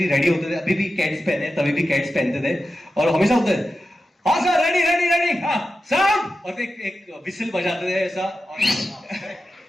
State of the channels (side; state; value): both; normal; correlation 0.92